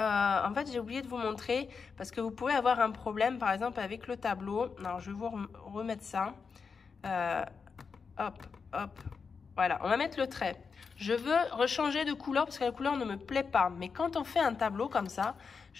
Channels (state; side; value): quieter; right; 5.4 dB